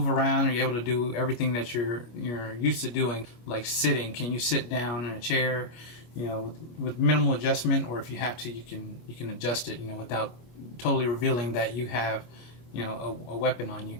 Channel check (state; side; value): late; right; 25 ms